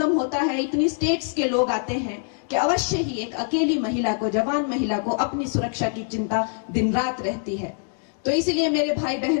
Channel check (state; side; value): silent; right; digital silence